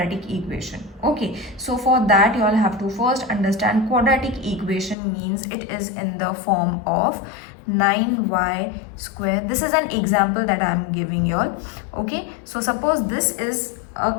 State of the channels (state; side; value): drops out; right; at 5.0 s